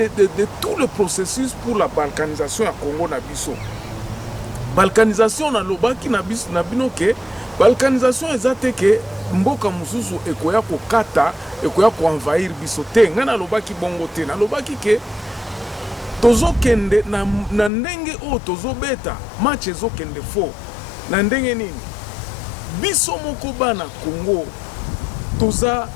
tout le processus pour la balkanisation à Congo Nabiso. Balkanisation na lobaki Nabiso Nabino ke balkanisation ezate ke mboka mususu ekoya ko kata ekoya ko envahir biso te ngana lobaki bongo te na lobaki ke tozo kende na ndenge o tozo beta match ezo kende fo na ndenge nini biso moko bana Congo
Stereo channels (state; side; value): drops out; right; at 17.7 s